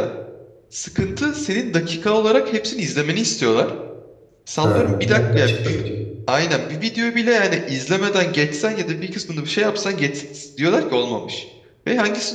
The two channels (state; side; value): identical; both; correlation 1.00